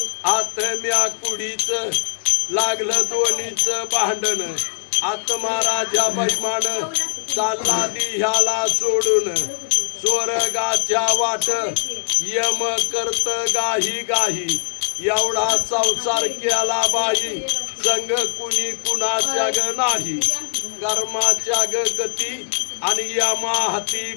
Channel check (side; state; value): right; silent; digital silence